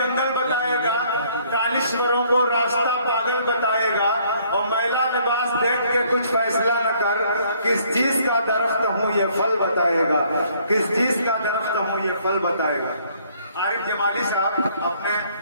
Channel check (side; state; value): both; inverted; correlation -0.63